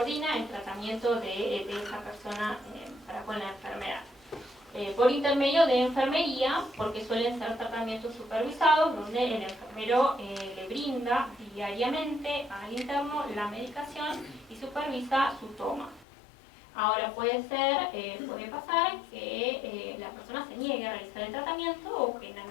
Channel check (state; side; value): drops out; right; at 16.1 s